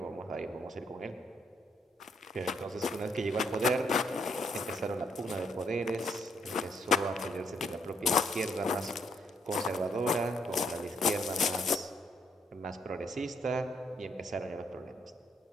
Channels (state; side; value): normal; both; correlation 0.72